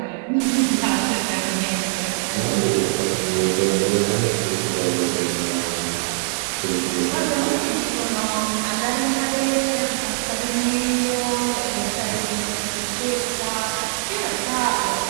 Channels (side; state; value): left; silent; digital silence